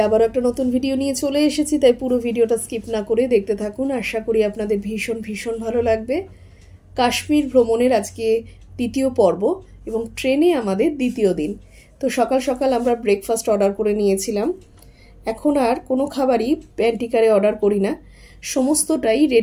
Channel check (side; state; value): both; identical; correlation 1.00